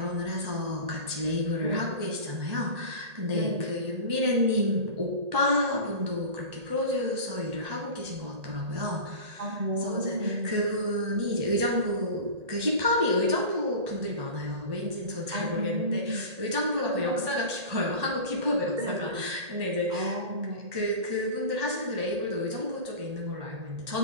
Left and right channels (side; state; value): left; late; 1.8 ms